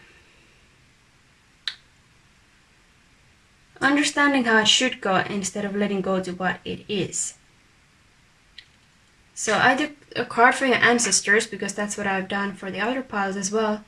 understanding how it should go instead of letting go to what it is. So I took a card for your ancestors, because that's what I've done for the other piles as well,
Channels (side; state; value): both; identical; correlation 1.00